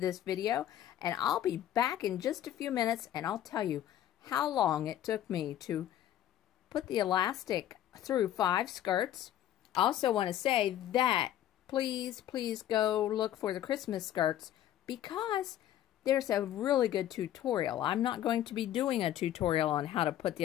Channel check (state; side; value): quieter; right; 11.9 dB